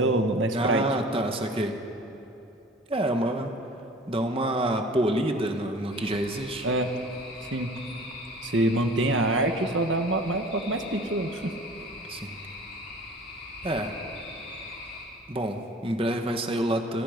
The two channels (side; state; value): both; normal; correlation 0.45